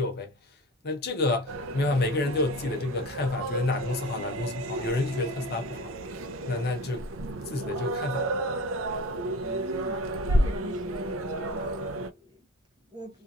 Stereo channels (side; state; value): both; normal; correlation 0.35